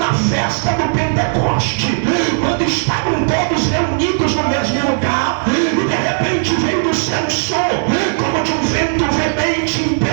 festa do Pentecoste, quando estavam todos reunidos no mesmo lugar, e de repente veio do céu um som como de um vento veemente,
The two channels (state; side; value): silent; left; 69 dB below the other